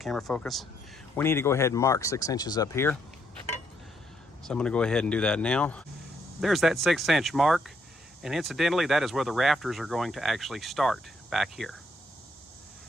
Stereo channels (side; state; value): both; normal; correlation 0.73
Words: focus, we need to go ahead and mark 6 inches up here. So I'm going to go ahead and do that now. There's that 6-inch mark, and incidentally, that is where the rafters are going to actually start back here.